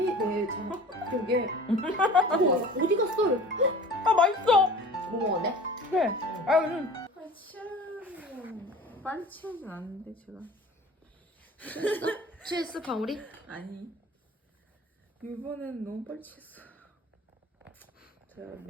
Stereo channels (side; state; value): both; normal; correlation 0.42